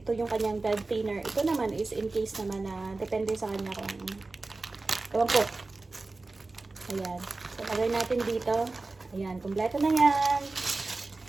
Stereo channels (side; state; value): left; quieter; 3.4 dB